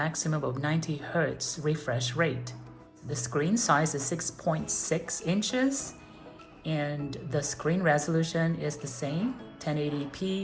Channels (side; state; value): both; identical; correlation 1.00